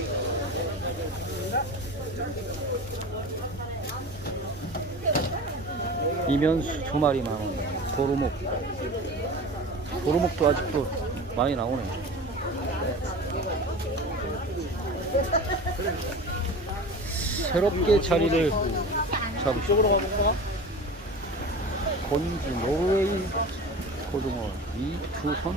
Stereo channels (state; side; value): normal; both; correlation 0.34